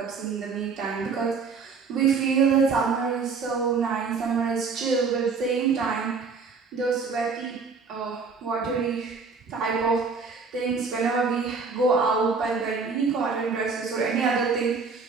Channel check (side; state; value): left; quieter; 4.9 dB